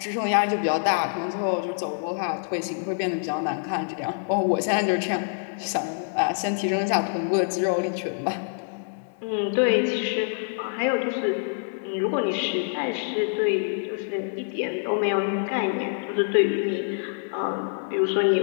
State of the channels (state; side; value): silent; right; digital silence